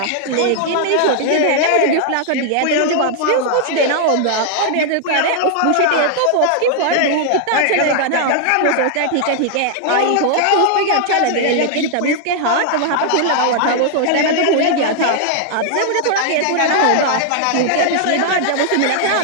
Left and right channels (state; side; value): different; both; correlation -0.01